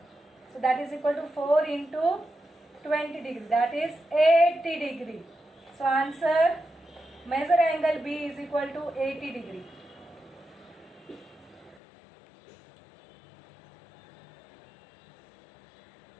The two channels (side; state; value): right; drops out; at 11.8 s